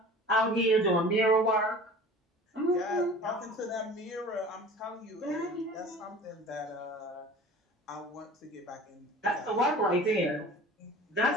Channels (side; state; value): both; normal; correlation 0.42